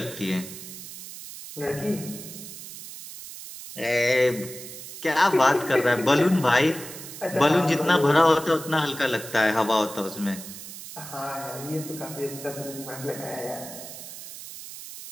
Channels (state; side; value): noise; right; hiss, 12 dB below the sound